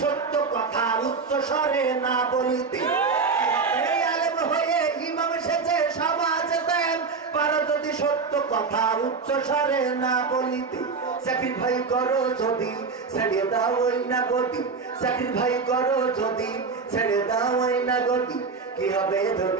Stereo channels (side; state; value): left; quieter; 4.8 dB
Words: সত্য কথা উচ্চ স্বরে না বলিতে, কি হবে আলেম হয়ে ইমাম সেজে সমাজেতে, পারো যদি সত্য কথা উচ্চ স্বরে না বলিতে, স্যাক্রিফাই করো যদি ছেড়ে দাও ওই না গতি, স্যাক্রিফাই করো যদি ছেড়ে দাও ওই না গতি, কি হবে